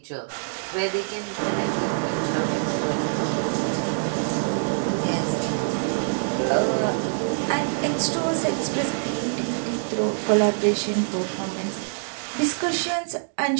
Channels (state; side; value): silent; left; digital silence